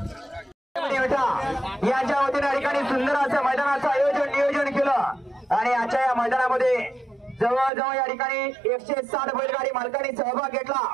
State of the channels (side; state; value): left; drops out; at 7.7 s